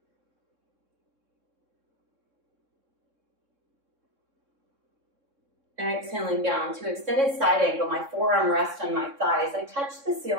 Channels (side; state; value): left; late; 3.6 ms